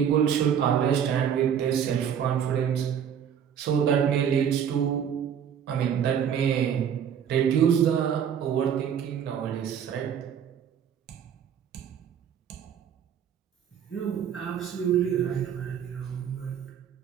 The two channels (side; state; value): left; quieter; 8.5 dB